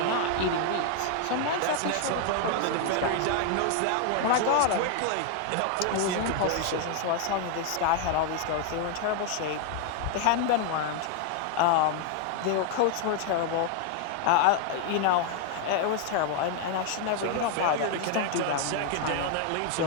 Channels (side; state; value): both; different; correlation 0.00